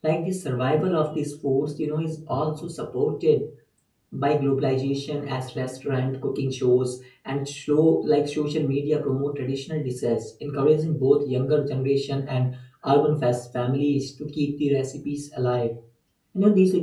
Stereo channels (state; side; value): identical; both; correlation 1.00